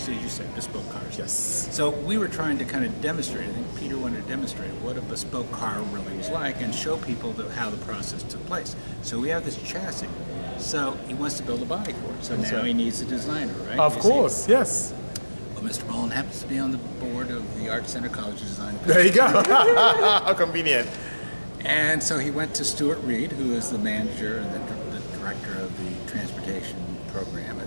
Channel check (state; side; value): inverted; both; correlation -1.00